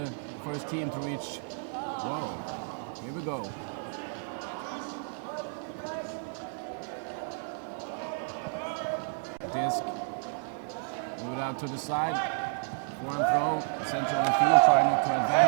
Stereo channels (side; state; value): left; silent; digital silence